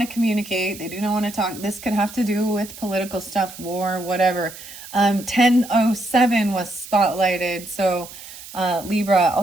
to communicate. They do not want to talk. This could have to do with political stuff, war, whatever. 1007 was spotlighted. So Libra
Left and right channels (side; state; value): right; noise; hiss, 15 dB below the sound